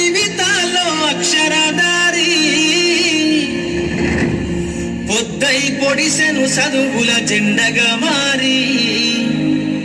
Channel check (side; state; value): both; identical; correlation 1.00